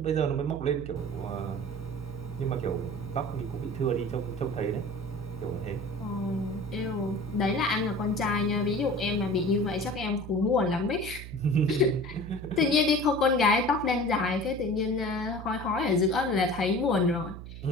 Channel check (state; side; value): noise; right; hum, 11 dB below the sound